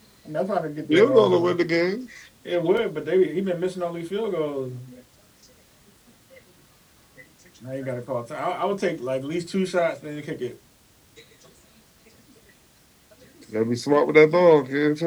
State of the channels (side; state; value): both; identical; correlation 1.00